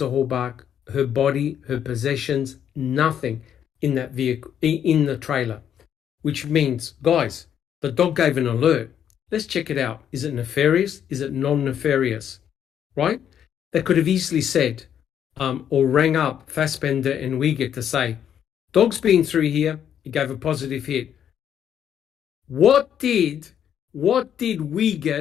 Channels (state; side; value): quieter; right; 9.3 dB